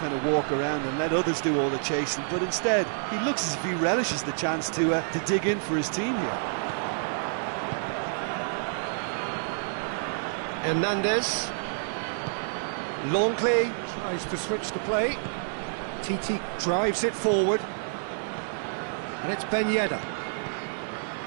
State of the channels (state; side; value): silent; left; digital silence